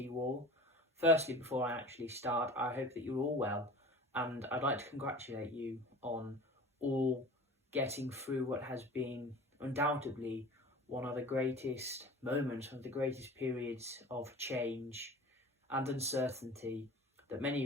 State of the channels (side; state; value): both; normal; correlation 0.39